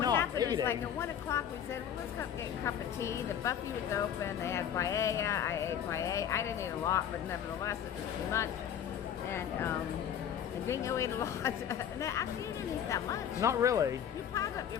Not happened is eating. like at 1 o'clock we said, well, let's go get a cup of tea. The buffet was open. They had paella. I ate paella. I didn't eat a lot, but nevertheless it was too much. And Dingo ate a lot. No, actually, you didn't eat that much. Not really. You piled up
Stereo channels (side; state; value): right; quieter; 9.1 dB